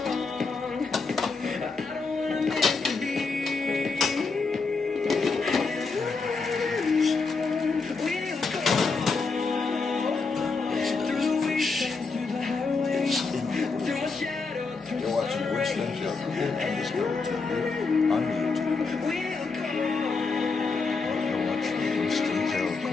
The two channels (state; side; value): quieter; right; 4.3 dB